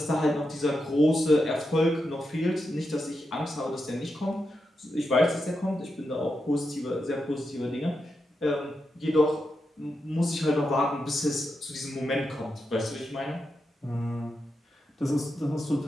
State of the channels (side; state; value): both; normal; correlation 0.86